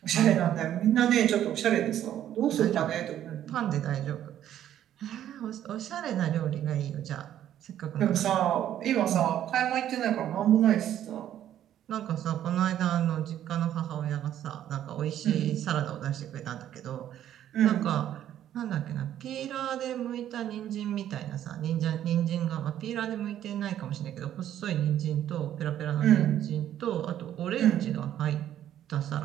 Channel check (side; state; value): left; quieter; 11.2 dB